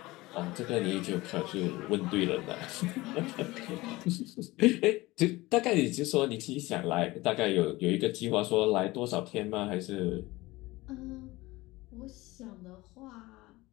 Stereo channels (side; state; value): right; quieter; 20.1 dB